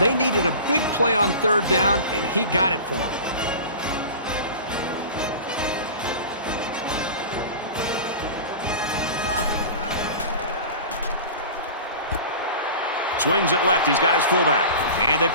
needed a big play on third down, and he got it for them. Swings it left. He's got his fullback. And they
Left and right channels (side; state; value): both; inverted; correlation -0.35